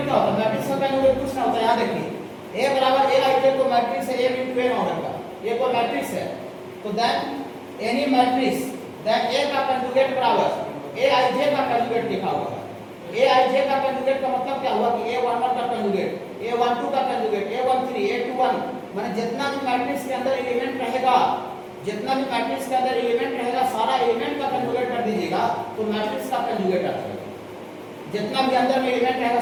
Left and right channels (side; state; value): both; identical; correlation 1.00